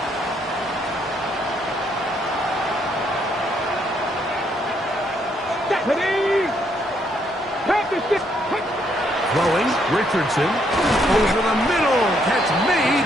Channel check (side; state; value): both; normal; correlation 0.72